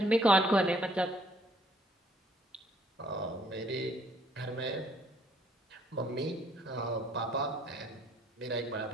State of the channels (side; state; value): both; normal; correlation 0.64